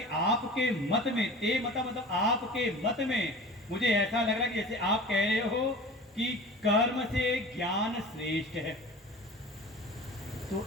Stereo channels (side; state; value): both; normal; correlation 0.38